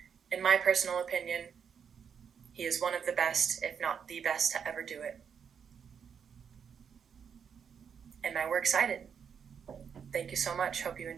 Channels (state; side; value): quieter; left; 7.2 dB